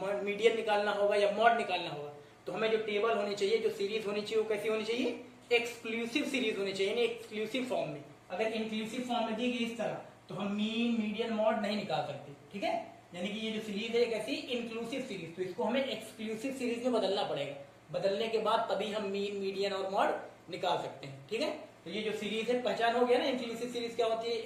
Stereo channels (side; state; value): both; identical; correlation 1.00